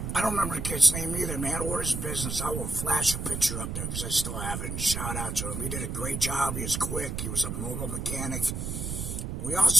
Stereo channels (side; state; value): right; noise; rumble, 4 dB below the sound